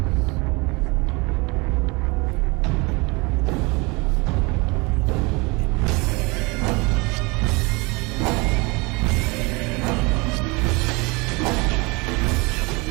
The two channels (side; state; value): left; quieter; 26.7 dB